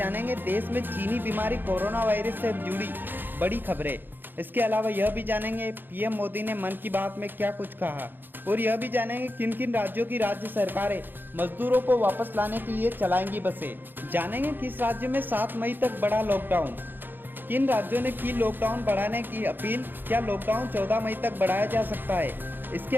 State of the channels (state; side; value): late; left; 0.094 ms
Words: देश में चीनी बीमारी कोरोना वायरस से जुड़ी बड़ी खबरें। इसके अलावा यह भी जानेंगे पीएम मोदी ने मन की बात में क्या कुछ कहा, और यह भी जानेंगे किन किन राज्यों की राज्य सरकारें मजदूरों को वापस लाने के लिए चलाएंगी बसें। जानेंगे किस राज्य में 7 मई तक बढ़ा लॉकडाउन, किन राज्यों ने की लॉकडाउन बढ़ाने की अपील, क्या लॉकडाउन 14 मई तक बढ़ाया जा सकता है। इसके